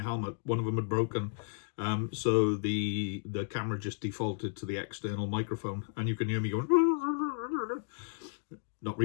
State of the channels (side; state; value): right; silent; digital silence